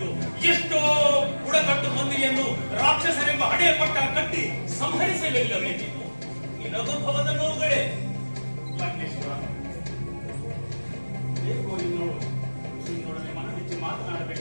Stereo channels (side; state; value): both; inverted; correlation -1.00